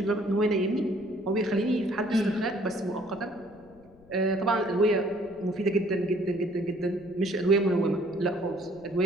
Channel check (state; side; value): noise; left; rumble, 25 dB below the sound